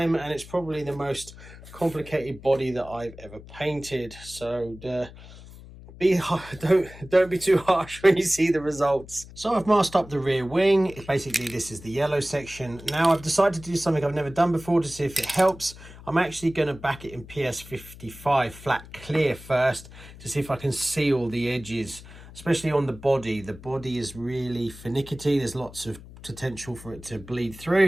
and it's probably the most complicated body that I've ever painted. So don't be too harsh when you see the results. So I've masked up the rear wing. Basically, this is the yellow section. Now I've decided to do something I've never done before to see if it helps. I'm actually going to back it in PS55 flat clear first to see if I can see all the edges, especially on the body. The body is really finicky. There's lots of potential for it to bleed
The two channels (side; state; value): left; noise; hum, 17 dB below the sound